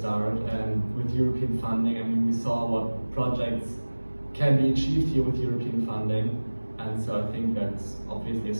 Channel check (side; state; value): both; inverted; correlation -1.00